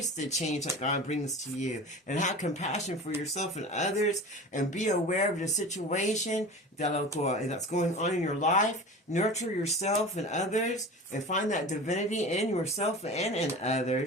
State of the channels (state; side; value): normal; both; correlation 0.34